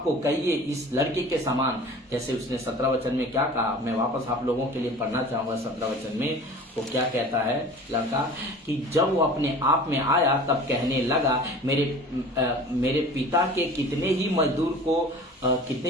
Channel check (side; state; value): both; normal; correlation 0.42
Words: को कहिए इस लड़के के समान, जैसे उसने 17 वचन में क्या कहा। मैं वापस आप लोगों के लिए पढ़ना चाहूंगा 17 वचन में वो क्या कहता है लड़का, कि जब वो अपने आप में आया तब कहने लगा, मेरे पिता के कितने ही मजदूर